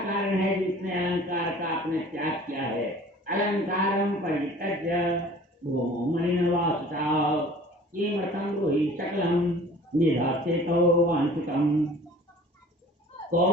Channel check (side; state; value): both; normal; correlation 0.47